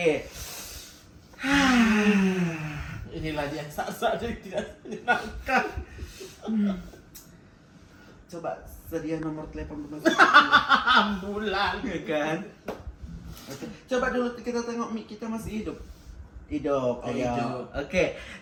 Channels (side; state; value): both; identical; correlation 1.00